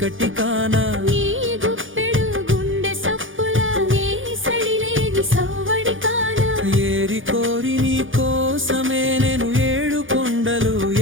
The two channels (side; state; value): left; late; 0.58 ms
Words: కానా ఏరి కోరి నీ కోసమే నేను 7 కొండలు